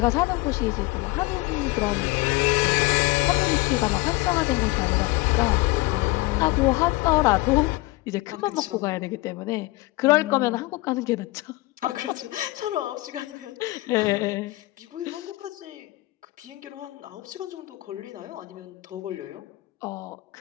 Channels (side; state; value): right; quieter; 20.9 dB